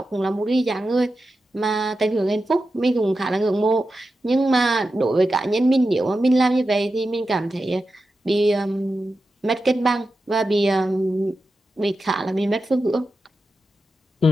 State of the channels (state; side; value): normal; both; correlation 0.91